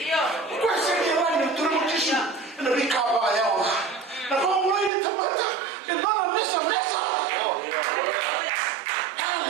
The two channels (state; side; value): drops out; left; at 4.9 s